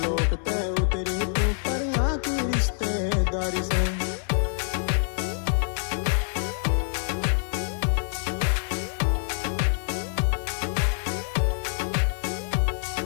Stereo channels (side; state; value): right; silent; digital silence